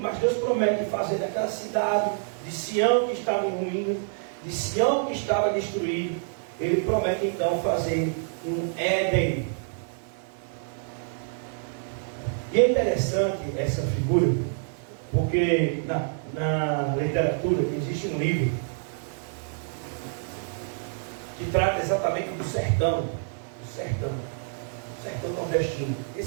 mas Deus promete fazer daquela cidade de Sião que estava em ruínas, de Sião que estava destruído, Ele promete então fazer um Éden. E é interessante essa figura, porque na literatura existe um livro que trata exatamente do sertão nordestino,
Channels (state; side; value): silent; left; digital silence